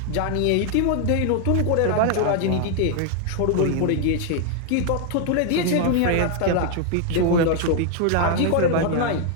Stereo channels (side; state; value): both; different; correlation 0.00